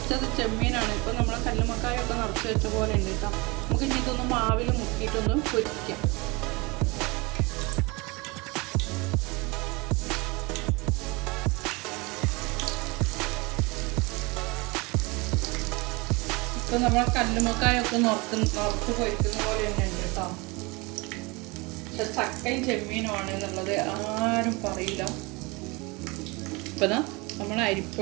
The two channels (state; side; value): quieter; left; 25.9 dB